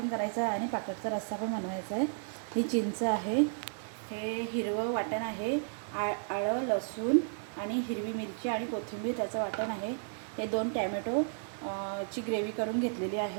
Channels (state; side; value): silent; left; digital silence